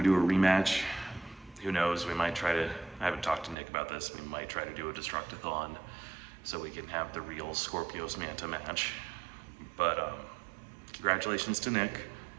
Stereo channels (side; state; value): left; drops out; at 3.6 s